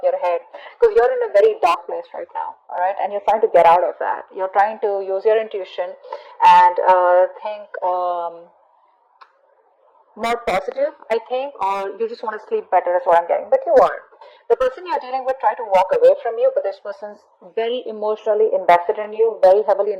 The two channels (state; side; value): identical; both; correlation 1.00